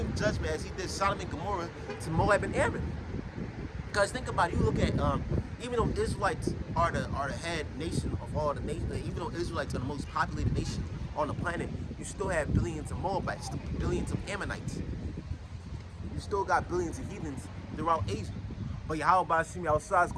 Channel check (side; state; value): both; identical; correlation 1.00